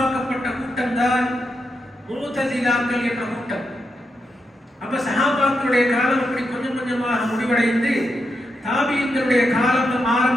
கூட்டம் தான் முஅ்தஸிலாக்கள் என்ற கூட்டம். அப்ப சஹாபாக்களுடைய காலம் அப்படி கொஞ்சம் கொஞ்சமாக முடிவடைந்து தாபீன்களுடைய காலம்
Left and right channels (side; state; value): both; normal; correlation 0.84